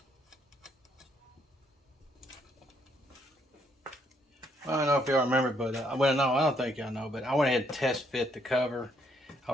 I don't know if y'all remember, but well, no, I don't think y'all know, but I went ahead and test fit the cover. I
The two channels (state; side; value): normal; both; correlation 0.71